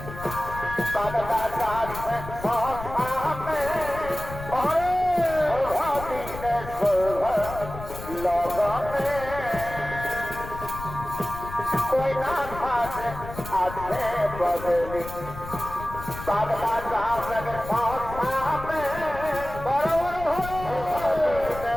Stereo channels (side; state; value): left; noise; rumble, 11 dB below the sound